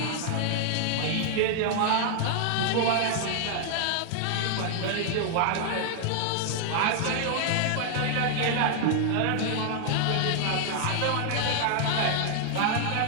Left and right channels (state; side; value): different; both; correlation 0.00